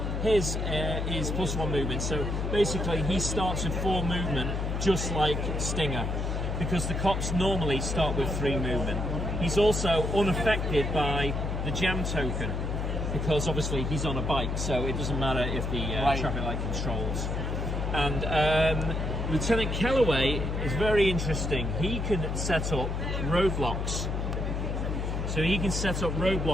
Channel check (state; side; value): noise; left; hum, 1 dB below the sound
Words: his is +1 movement. So basically, he starts with 4 movement, just like Stinger, because the cops normally start with 3 movement. He's also unaffected by the jam token, because obviously he's on a bike, so it doesn't matter if the traffic light controls. And Lieutenant Kellaway is very interesting. He can set up roadblocks. So he can set up